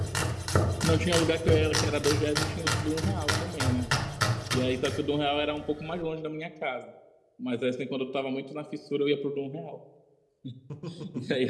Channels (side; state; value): both; identical; correlation 1.00